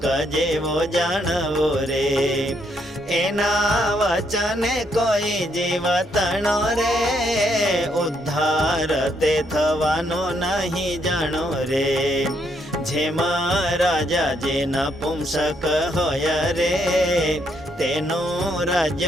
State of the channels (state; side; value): normal; both; correlation 0.74